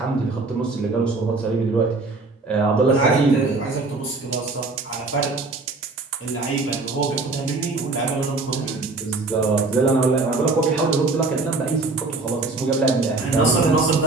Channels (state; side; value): quieter; left; 3.6 dB